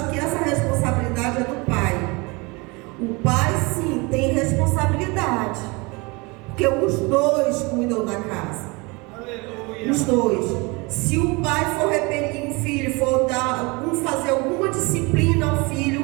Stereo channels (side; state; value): left; quieter; 26.8 dB